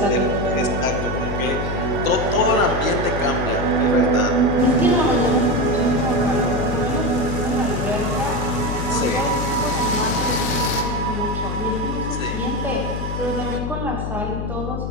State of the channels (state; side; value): noise; left; hum, 4 dB below the sound